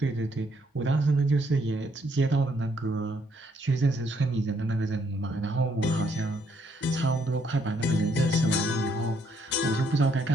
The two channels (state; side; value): normal; both; correlation 0.71